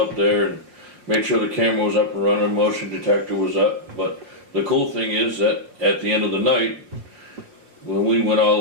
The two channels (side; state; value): left; late; 5.3 ms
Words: there and made sure the camera was up and running, motion detector was up. But the cool thing is that at the end of the night, when we went all